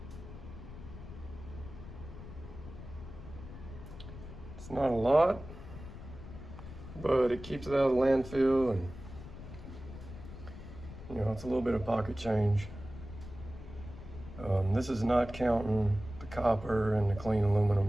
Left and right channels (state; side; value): noise; left; rumble, 13 dB below the sound